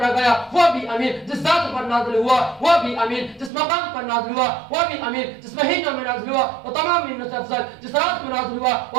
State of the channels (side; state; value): left; drops out; at 3.5 s